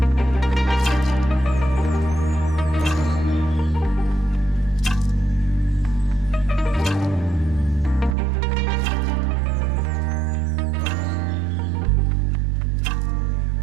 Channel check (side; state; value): left; drops out; at 8.2 s